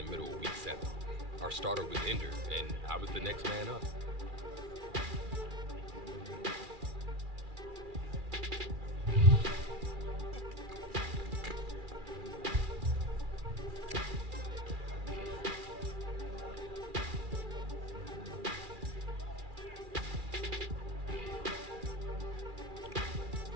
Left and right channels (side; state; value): left; late; 2.4 ms